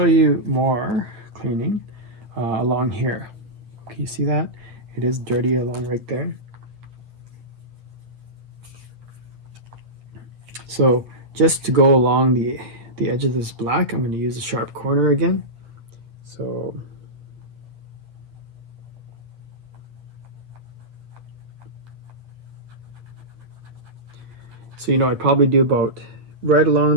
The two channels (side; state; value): left; late; 8.2 ms